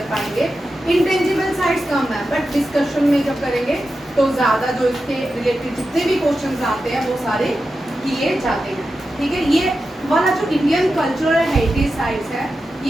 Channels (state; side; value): normal; both; correlation 0.91